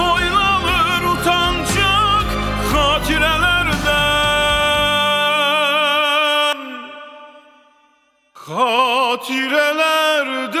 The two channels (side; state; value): both; identical; correlation 1.00